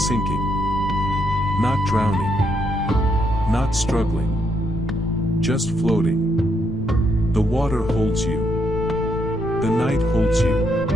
Not drowning. Not struggling. Just floating. The water holds you. The night holds you.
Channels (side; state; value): left; noise; rumble, 11 dB below the sound